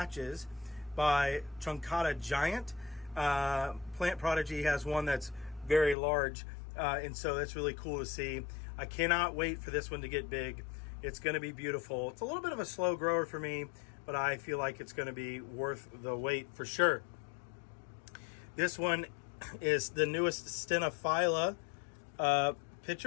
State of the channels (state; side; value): drops out; right; at 6.0 s